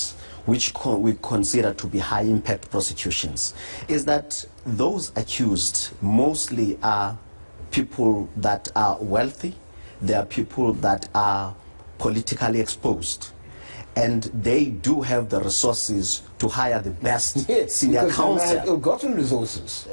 which we consider to be high impact prosecutions, is that those accused mostly are people that are wealthy, they are people that are politically exposed, and they do have the resources to hire the best senior counsel. They have ill-gotten resources.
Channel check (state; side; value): inverted; both; correlation -1.00